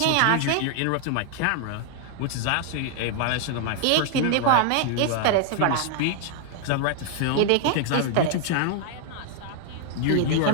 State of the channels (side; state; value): both; different; correlation 0.00